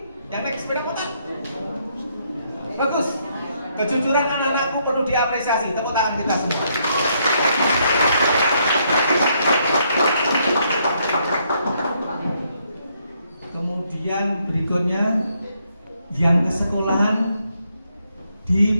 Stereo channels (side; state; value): both; inverted; correlation -0.73